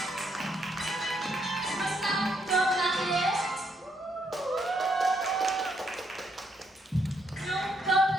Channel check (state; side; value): normal; both; correlation 0.74